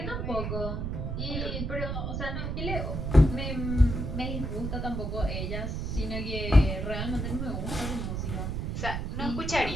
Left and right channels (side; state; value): right; noise; rumble, 2 dB below the sound